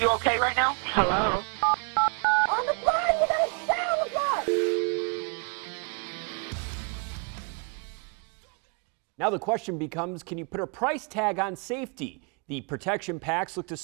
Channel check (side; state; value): left; quieter; 38.2 dB